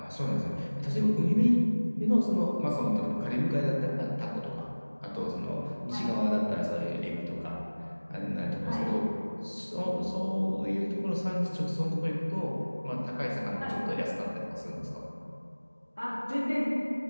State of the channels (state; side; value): inverted; both; correlation -1.00